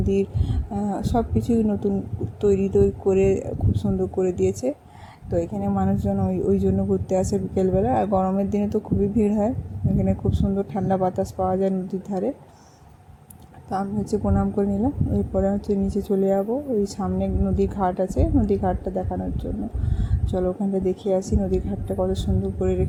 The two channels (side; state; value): both; identical; correlation 1.00